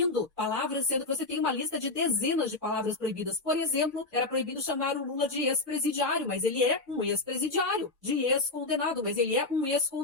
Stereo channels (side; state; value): right; quieter; 3.2 dB